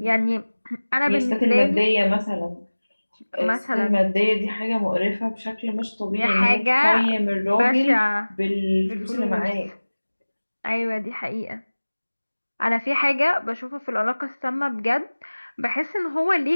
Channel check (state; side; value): inverted; both; correlation -1.00